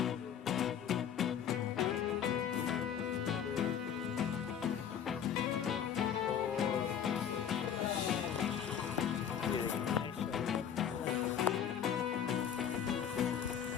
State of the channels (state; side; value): quieter; right; 8.6 dB